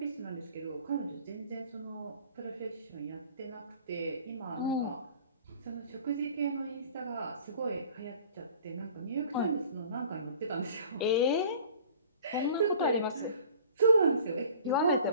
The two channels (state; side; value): inverted; both; correlation -0.48